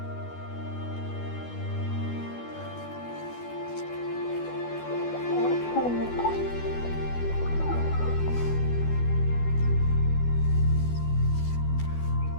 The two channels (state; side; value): late; right; 12 ms